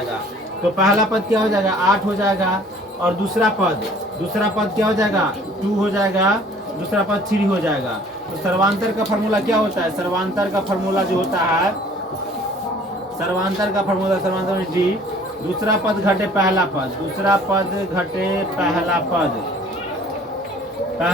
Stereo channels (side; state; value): both; normal; correlation 0.53